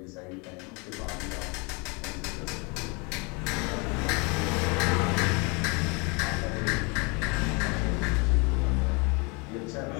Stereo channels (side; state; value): right; quieter; 30.4 dB